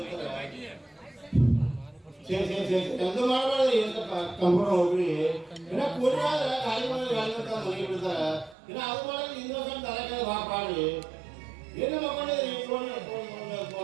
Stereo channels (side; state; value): left; drops out; at 8.6 s